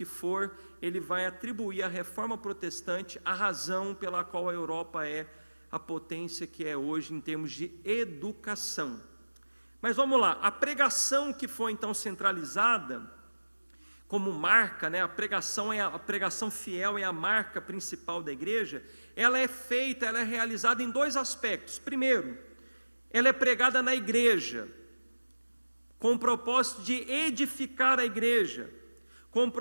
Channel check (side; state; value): both; inverted; correlation -1.00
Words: for, ele vai atribuir à Reforma Protestante a razão pela qual a Europa é a potência que é hoje em termos de educação. Mas vamos lá, a pregação que foi então centralizada como marca, né, a pregação fiel é a marca principal da igreja, ela é realizada em dois aspectos. Primeiro, ela é pregada na igreja, com o propósito de edificar a igreja, com o